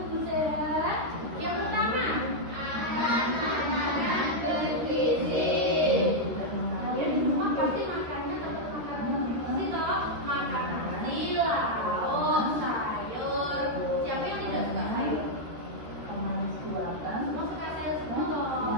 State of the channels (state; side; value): late; left; 13 ms